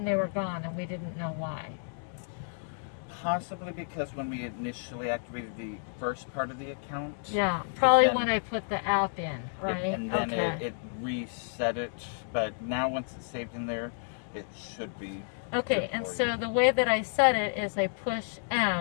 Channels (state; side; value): silent; right; digital silence